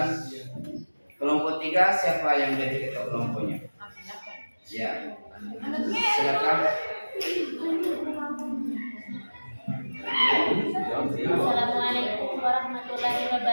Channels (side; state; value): both; inverted; correlation -1.00